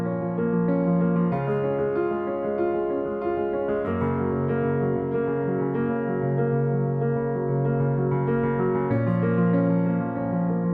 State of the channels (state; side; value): identical; both; correlation 1.00